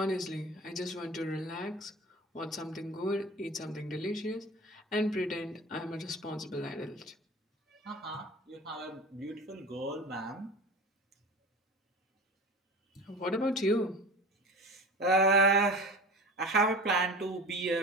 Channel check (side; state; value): both; normal; correlation 0.35